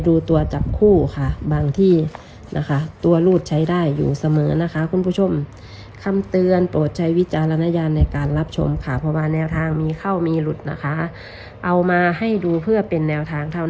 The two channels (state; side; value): identical; both; correlation 1.00